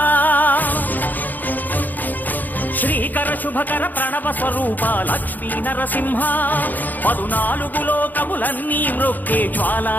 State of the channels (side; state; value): right; late; 0.085 ms